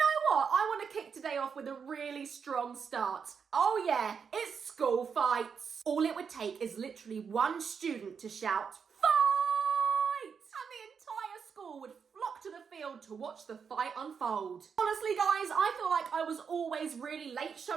what? I want to kick today off with a really strong start. Oh yeah, it's school fights. All it would take is literally one student to shout, "Fight!" and the entire school would flock to the field to watch the fight unfold. Honestly guys, I feel like I was always really late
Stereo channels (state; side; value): quieter; left; 6.4 dB